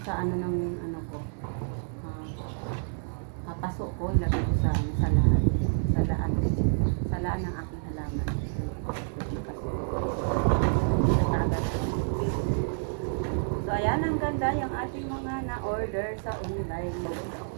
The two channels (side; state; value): left; silent; digital silence